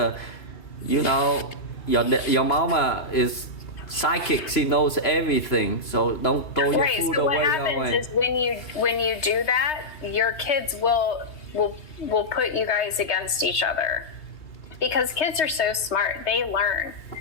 your mama is psychic. She knows everything, so don't throw your food so away. What happens is when you do that, your kids will put you guys against each other, because kids are so smart, they learn.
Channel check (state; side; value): late; right; 3.2 ms